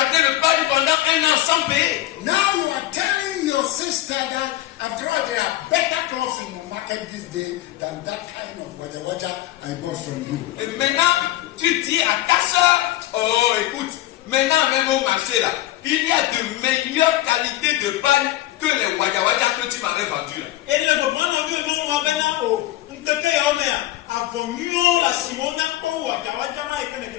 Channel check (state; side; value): quieter; right; 15.6 dB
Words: le pari pendant 1 an sans payer. Now you are telling your sister that after all there are better clothes in the market this day than that kind of water I bought from you. Et maintenant, tu dis à ta soeur, oh écoute, maintenant même au marché là, il y a de meilleures qualités de paille que les wada que tu m'avais vendu là.